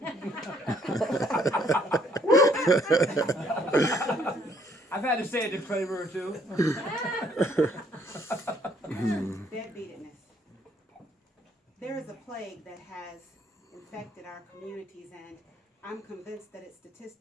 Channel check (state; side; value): normal; both; correlation 0.65